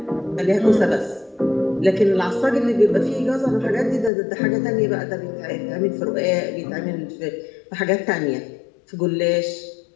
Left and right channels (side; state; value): right; drops out; at 4.1 s